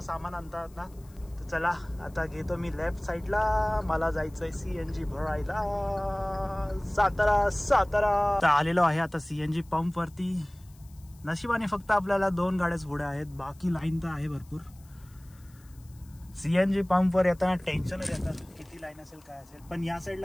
सामान आणतात ना. तर चला आता घेतो मी लेफ्ट साईडला. मला जायचंय CNG भरायला सातारा सातारा. आलेलो आहे आता CNG पंप वरती. नशिबाने फक्त आपल्याला 2 गाड्याच पुढे आहेत, बाकी लाईन तर आहे भरपूर. CNG पंपवर येताना टेन्शनच येतं, किती लाईन असेल काय असेल. पण या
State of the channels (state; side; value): noise; left; hiss, 28 dB below the sound